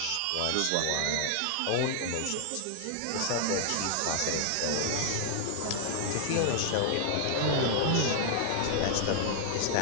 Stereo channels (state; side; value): different; both; correlation 0.00